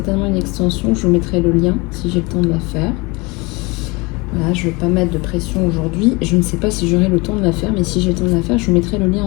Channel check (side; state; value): right; quieter; 25.9 dB